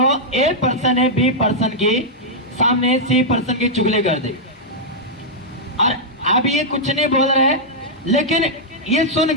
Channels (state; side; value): normal; both; correlation -0.07